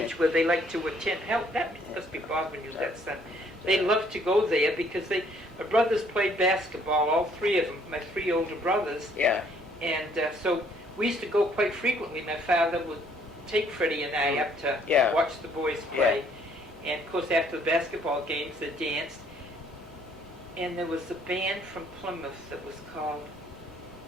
where they liked to attend. Hell, that must be Bob when you was that son. They loved to go there because my brothers played basketball, all three of them, my three older brothers. Yeah. And so we used to go quite frequently. My father would take Freddie and I up to watch the boys play. Yeah. And of course, after the basketball games, they danced. And there was a band from Plymouth that was called,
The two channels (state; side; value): normal; both; correlation 0.63